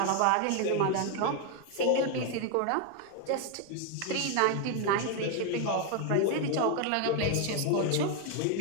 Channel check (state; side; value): different; both; correlation 0.01